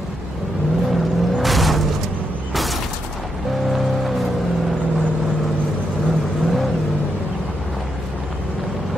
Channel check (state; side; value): normal; both; correlation 0.81